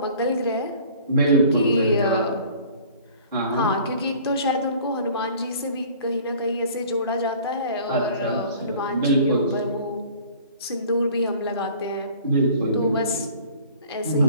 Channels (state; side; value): inverted; both; correlation -0.49